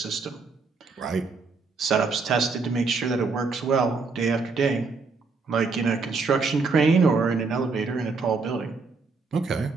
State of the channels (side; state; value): left; quieter; 4.4 dB